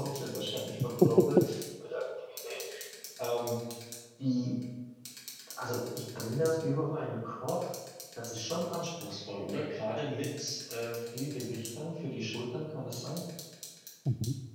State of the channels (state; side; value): identical; both; correlation 1.00